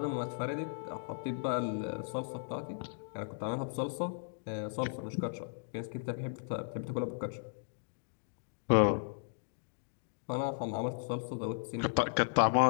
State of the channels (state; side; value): silent; right; digital silence